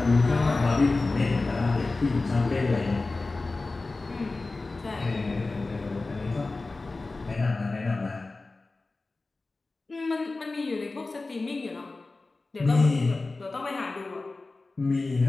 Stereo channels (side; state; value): right; quieter; 3.4 dB